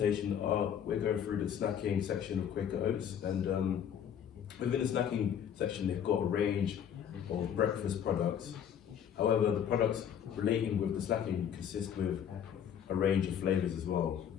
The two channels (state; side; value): quieter; right; 8.8 dB